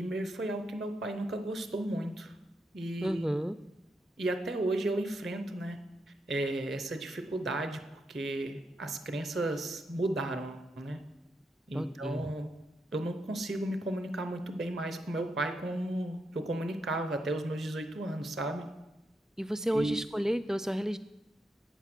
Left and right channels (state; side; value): normal; both; correlation 0.82